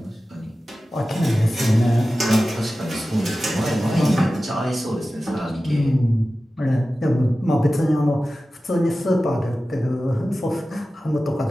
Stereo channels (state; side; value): normal; both; correlation 0.95